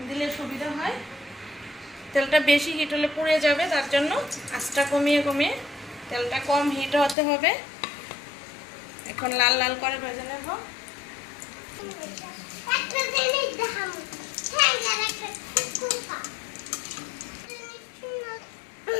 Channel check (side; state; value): right; drops out; at 7.2 s